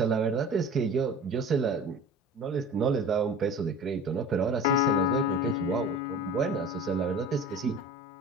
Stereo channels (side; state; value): both; normal; correlation 0.39